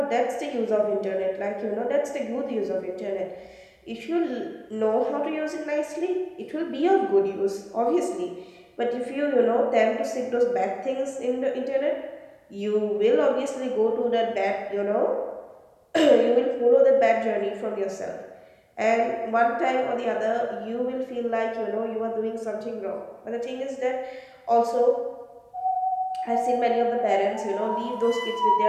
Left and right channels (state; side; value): identical; both; correlation 1.00